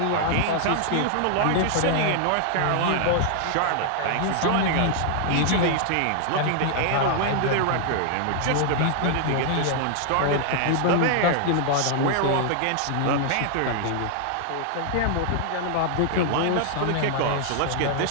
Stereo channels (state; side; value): different; both; correlation 0.00